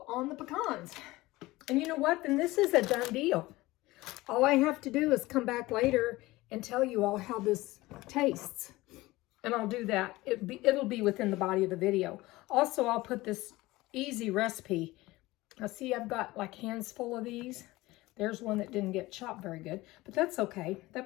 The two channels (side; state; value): right; quieter; 19.4 dB